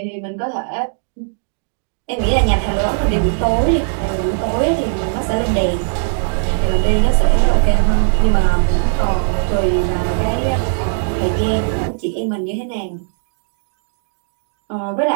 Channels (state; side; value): silent; left; digital silence